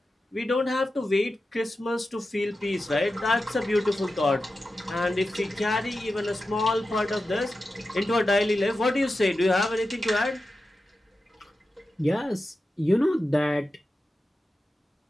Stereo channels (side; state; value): both; normal; correlation 0.92